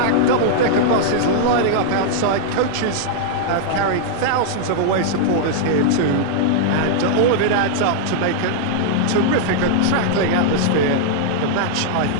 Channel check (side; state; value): both; different; correlation -0.01